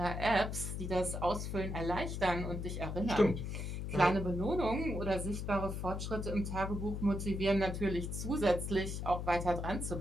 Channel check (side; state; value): left; noise; hum, 4 dB below the sound